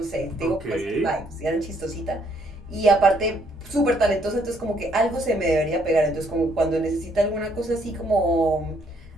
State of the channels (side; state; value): both; normal; correlation 0.69